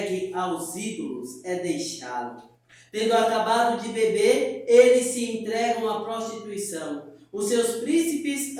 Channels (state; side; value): identical; both; correlation 1.00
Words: aos ídolos, é deixá-lo. Tendo acabado de beber, eles se entregam à prostituição. Os seus príncipes